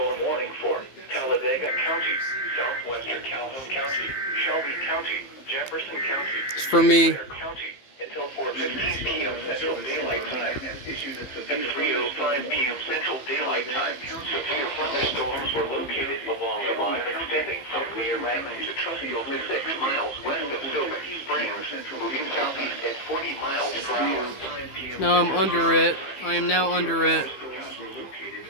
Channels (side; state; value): right; late; 15 ms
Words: warning for Talladega County, southwestern Calhoun County, Shelby County, Jefferson County, It's for me. Clare County, until 4:15 p.m. Central Daylight Time. At 3:05 p.m. Central Daylight Time, severe thunderstorms were located along a line extending from Clear Island to Trustfield, 6 miles west of Sylvan Springs, moving southeast at 40 miles per hour. No, I'm under it. I am now under it.